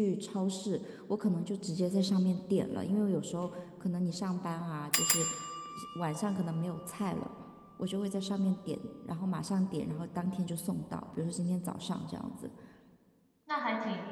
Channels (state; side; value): identical; both; correlation 1.00